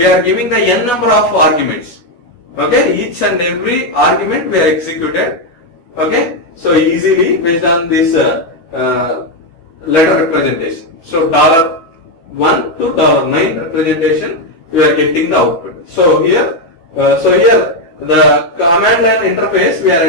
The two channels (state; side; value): late; right; 12 ms